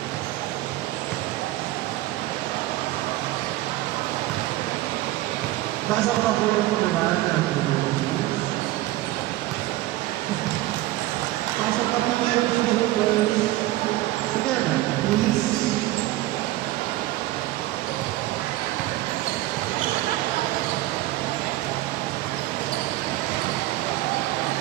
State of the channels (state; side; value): quieter; left; 16.7 dB